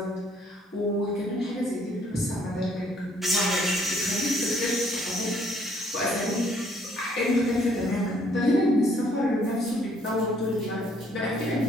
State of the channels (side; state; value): both; normal; correlation 0.64